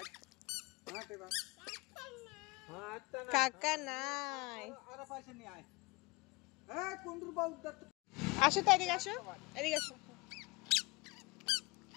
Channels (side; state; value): right; quieter; 24.7 dB